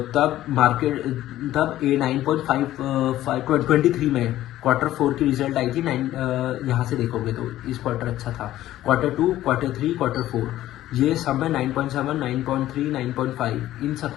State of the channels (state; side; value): quieter; right; 14.1 dB